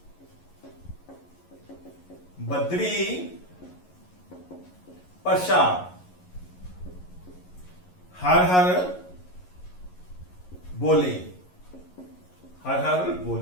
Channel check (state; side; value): late; right; 11 ms